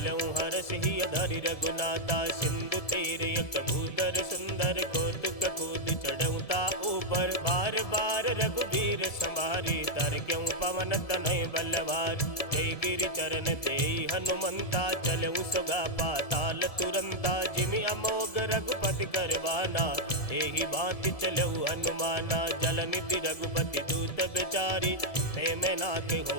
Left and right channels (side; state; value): right; late; 1.7 ms